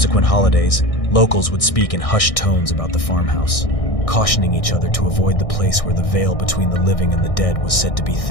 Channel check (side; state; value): right; late; 1.6 ms